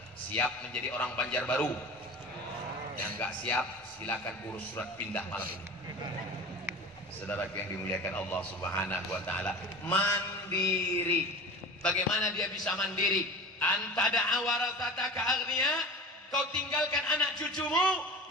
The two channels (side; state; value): both; normal; correlation 0.34